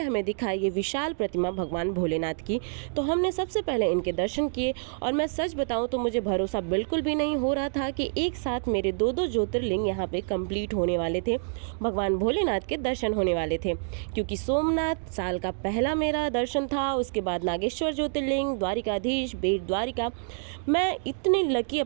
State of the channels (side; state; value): left; silent; digital silence